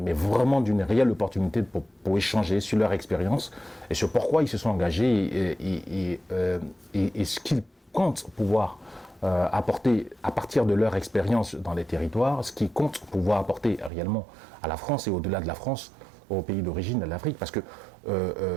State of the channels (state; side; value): drops out; left; at 13.9 s